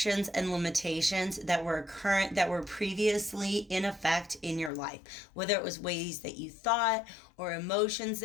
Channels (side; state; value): right; drops out; at 4.7 s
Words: and limitations that were previously in effect in your life, whether it was ways that you thought or emotions